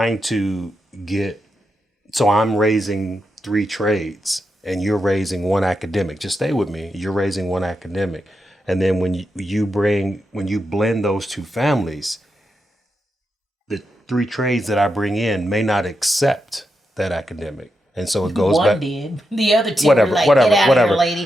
to get, so I'm raising 3 trades and you're raising 1 academic. Just stay with me. You're raising 1 academic. And then when you blend those two families, the 3 trades that I bring in may not accept that academic. And so it goes One back. did. The other two were like, get out of here,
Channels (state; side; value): normal; both; correlation 0.86